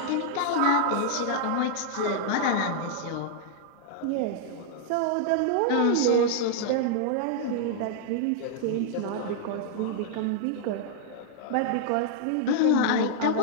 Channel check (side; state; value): both; different; correlation -0.01